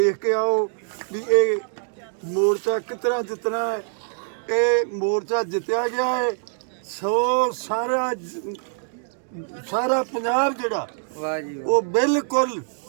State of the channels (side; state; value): left; silent; 63 dB below the other